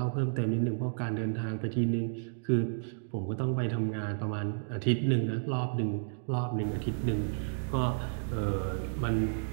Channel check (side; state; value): left; silent; digital silence